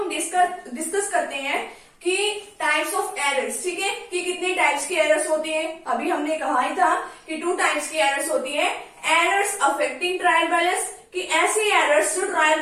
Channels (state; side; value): identical; both; correlation 1.00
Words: डिस्कस करते हैं कि टाइप्स ऑफ एरर्स। ठीक है, कि कितने टाइप्स की एरर्स होती हैं। अभी हमने कहा ही था कि 2 टाइप्स की एरर्स होती हैं, एरर्स अफेक्टिंग ट्रायल बैलेंस, कि ऐसी एरर्स जो ट्रायल